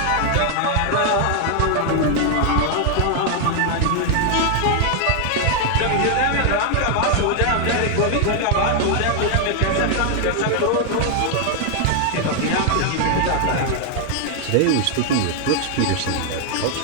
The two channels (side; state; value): both; different; correlation 0.00